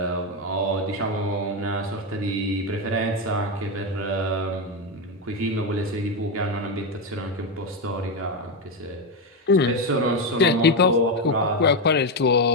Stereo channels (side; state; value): both; normal; correlation 0.09